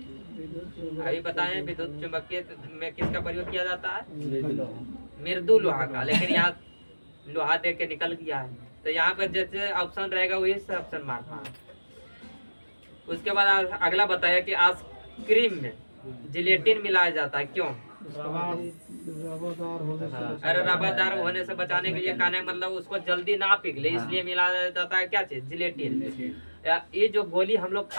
अभी बताएं विद्युत चुंबकीय में किसका प्रयोग किया जाता है? मृदु लोहा का। लेकिन यहाँ लोहा दे के निकल गया है, तो यहाँ पर जैसे ऑप्शन रहेगा वही से ऑप्शन मारना है। उसके बाद अगला बताया कि आइसक्रीम में जिलेटिन मिलाया जाता है, क्यों? अरे रबादार होने से बचाने के लिए, कहने मतलब उसको जल्दी ना पिघले इसलिए मिलाया जाता है क्या चीज? जिलेटिन। ये जो गोली हम लोग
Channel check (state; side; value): inverted; both; correlation -1.00